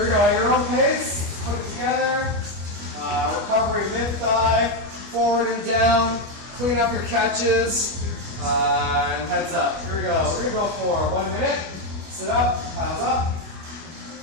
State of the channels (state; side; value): late; left; 25 ms